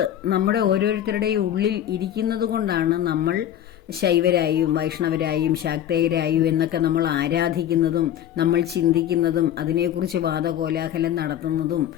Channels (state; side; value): quieter; right; 11.0 dB